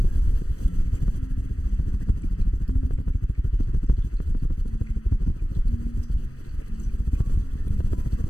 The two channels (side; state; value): right; late; 0.65 ms